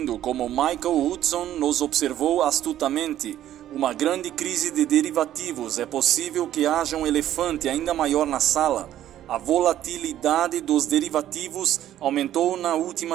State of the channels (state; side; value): quieter; left; 12.1 dB